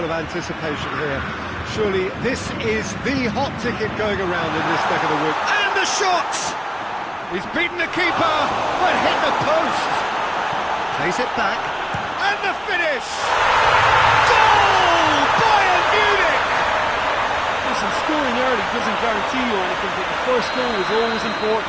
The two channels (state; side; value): identical; both; correlation 1.00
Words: of anticipation here. Surely this is the hot ticket going around in this neck of the woods. And the shot! He's beaten the keeper, but hit the post. Plays it back. And the finish! Goal! Bayern Munich! Listen, scoring early doesn't guarantee you anything, but the first goal is always